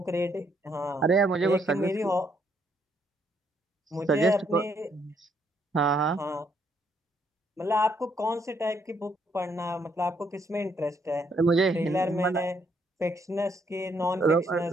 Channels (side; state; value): both; normal; correlation 0.72